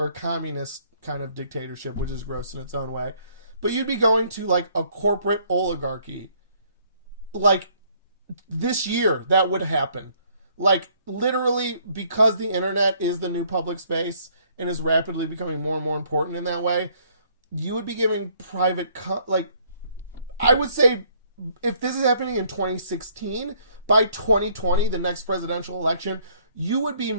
a communist kind of dictatorship, which is gross in its own way. But you'd be going to like a corporate oligarchy. Like this year, that would happen. Like literally, because the internet is the new public space and is rapidly becoming more and more important in that way, you would be giving private, I would say, if this is happening in 2016, by 2020, the next presidential election, you would be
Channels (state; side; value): inverted; both; correlation -0.64